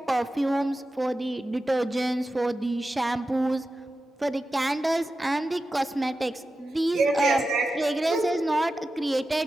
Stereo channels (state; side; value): normal; both; correlation 0.92